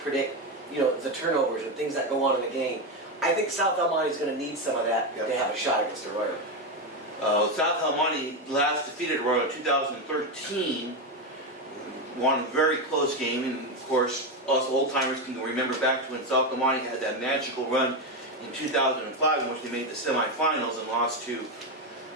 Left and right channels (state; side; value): normal; both; correlation 0.11